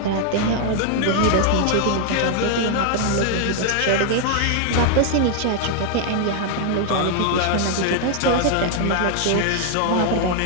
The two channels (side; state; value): both; different; correlation 0.00